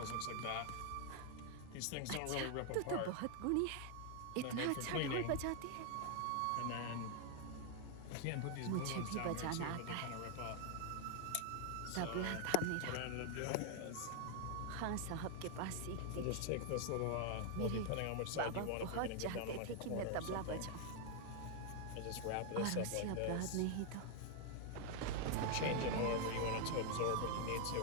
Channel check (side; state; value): both; different; correlation 0.00